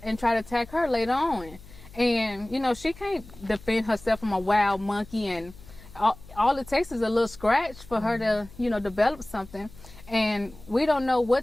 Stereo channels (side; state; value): left; noise; hum, 20 dB below the sound